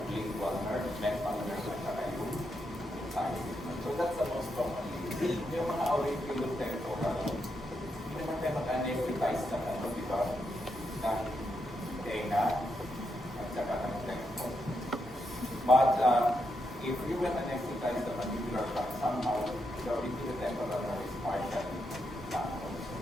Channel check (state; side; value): normal; both; correlation 0.82